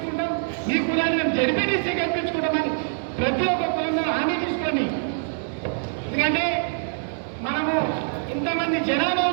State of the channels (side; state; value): left; silent; 59 dB below the other